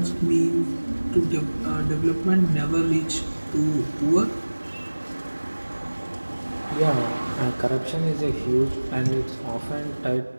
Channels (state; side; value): inverted; both; correlation -1.00